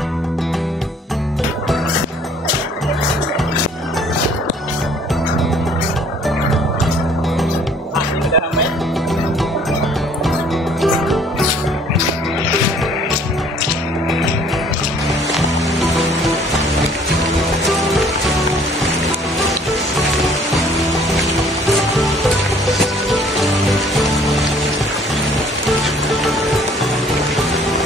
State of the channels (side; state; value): both; normal; correlation 0.57